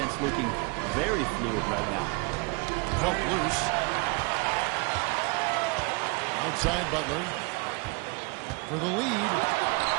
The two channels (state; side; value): quieter; left; 29.1 dB